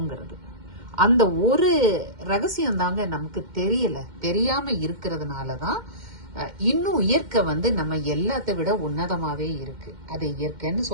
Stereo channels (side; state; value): left; late; 2.1 ms